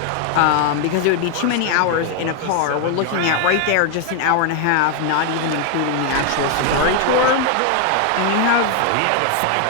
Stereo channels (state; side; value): different; both; correlation 0.00